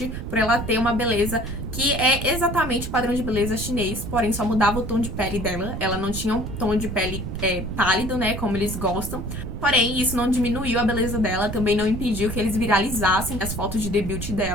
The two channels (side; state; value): right; noise; rumble, 6 dB below the sound